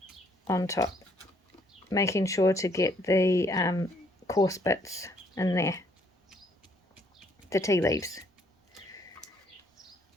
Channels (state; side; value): normal; both; correlation 0.66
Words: on top, making sure to get the coarse bits in there, the tea leaves,